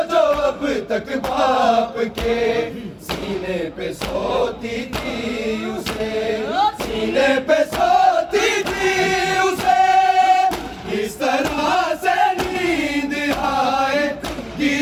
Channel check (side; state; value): both; identical; correlation 1.00